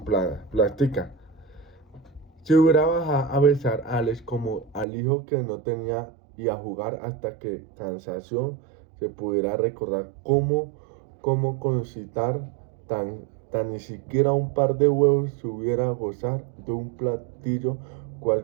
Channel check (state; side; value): drops out; left; at 4.9 s